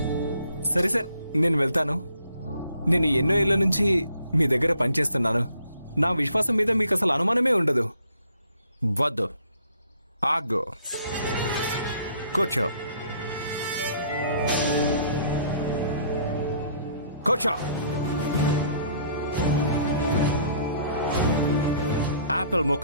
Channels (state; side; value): inverted; both; correlation -0.62